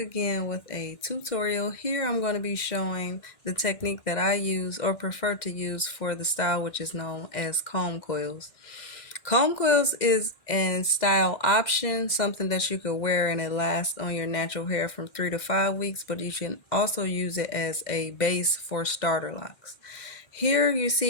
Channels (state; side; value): late; right; 2.1 ms